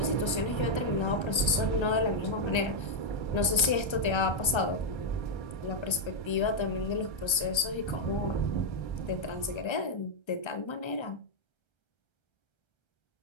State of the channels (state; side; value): late; right; 1.3 ms